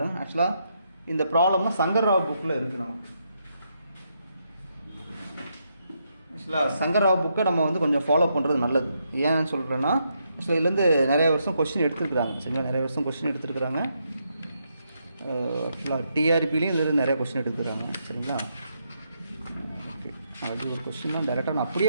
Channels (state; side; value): inverted; both; correlation -0.79